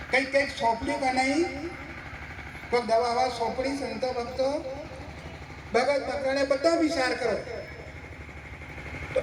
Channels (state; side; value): identical; both; correlation 1.00